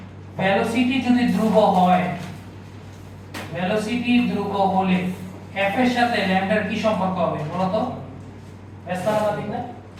ভেলোসিটি যদি ধ্রুব হয়, ভেলোসিটি ধ্রুব হলে f এর সাথে ল্যামডার কি সম্পর্ক হবে বলো তো? ব্যস্তানুপাতিক না?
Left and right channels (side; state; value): both; identical; correlation 1.00